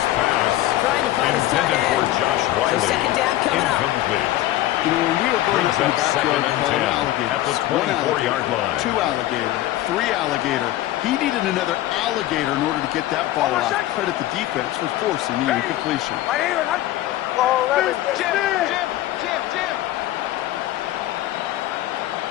pass Trying to find his tight intended for end. Josh So Wiley. 2nd down coming up. Incomplete. You know, when we were going Brings up in up the backyard 2nd and calling 10 alligators, at the 1 24-yard line. 2 alligator, 3 alligator. He needed another alligator in order to get that ball out. Credit the defense for forcing the incompletion. My name is Hunt. Ball 11. Jim.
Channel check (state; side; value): quieter; right; 14.9 dB